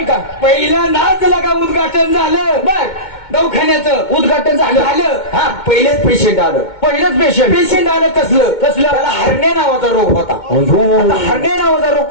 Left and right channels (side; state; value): right; late; 2.2 ms